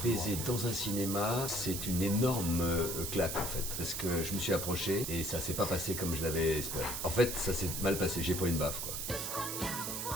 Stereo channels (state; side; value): noise; right; hiss, 3 dB below the sound